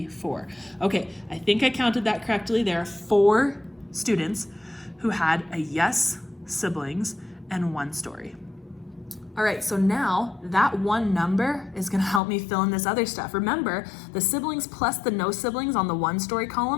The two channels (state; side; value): drops out; right; at 12.2 s